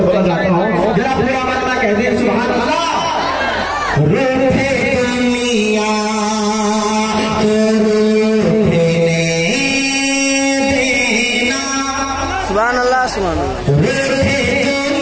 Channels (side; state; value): both; identical; correlation 1.00